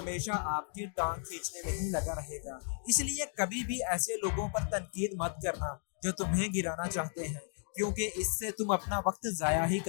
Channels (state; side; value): silent; right; 55 dB below the other